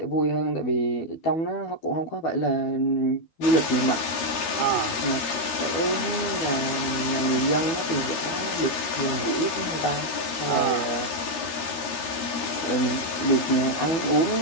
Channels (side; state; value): right; late; 13 ms